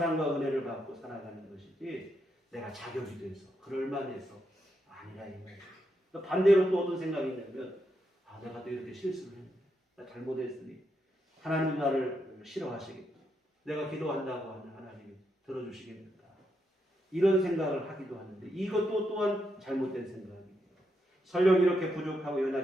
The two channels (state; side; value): normal; both; correlation 0.82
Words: 은혜를 받고 살아가는 것이지 내가 자격이 돼서 그럴만해서 아니라 이 말이에요. 반대로 또 어떤 생각이 있냐면 내가 또 이렇게 실수를 했네. 나 잘못했으니 하나님은 나를 싫어하시겠다. 내가 기도한다고 하는 하나님이 들어주시겠는가. 이런 생각을 하기도 하는데 이것도 또한 잘못된 생각이에요. 설령 이렇게 부족하고